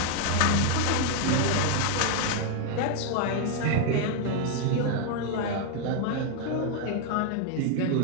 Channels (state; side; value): different; both; correlation 0.00